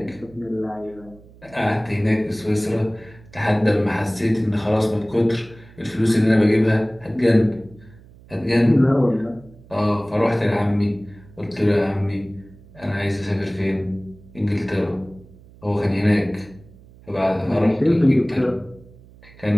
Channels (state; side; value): noise; right; hum, 23 dB below the sound